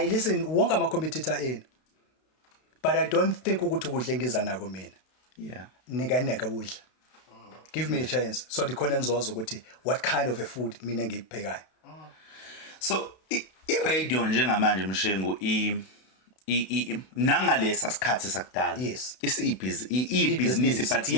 listen wonke ama competitor in. But I don't think ukuthi ukudla engiza nako mina. Yeah. Neka ukudla. Give me a chance. So dikhona nizozwa ukuthi what kind of a food mina ngikuphekayo. So i-radio njengamanje Mshengu nangalesa sikhathi sakudala. Yes. Business but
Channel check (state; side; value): late; right; 32 ms